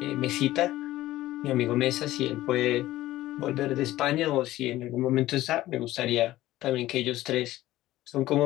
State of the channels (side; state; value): right; quieter; 15.7 dB